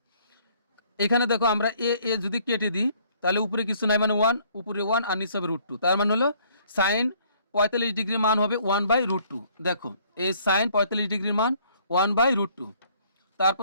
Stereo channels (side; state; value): both; inverted; correlation -0.61